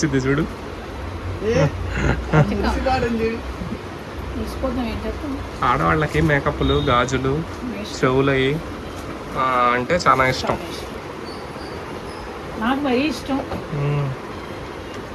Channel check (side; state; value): both; identical; correlation 1.00